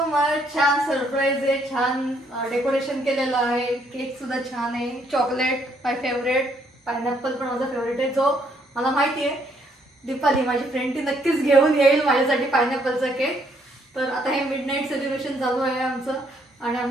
much. छान सरप्राईज आहे, छान डेकोरेशन केलेलं आहे, केक सुद्धा छान आहे, चॉकलेट माय फेवरेट, पायनॅपल पण माझा फेवरेट आहे, जो मला माहिती आहे दीपाली माझी फ्रेंड ती नक्कीच घेऊन येईल माझ्यासाठी पायनॅपलचा केक। तर आता हे मिडनाईट सेलिब्रेशन चालू आहे आमचं, आणि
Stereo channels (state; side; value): normal; both; correlation 0.69